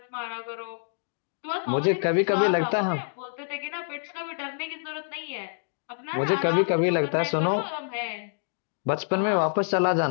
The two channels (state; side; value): silent; right; digital silence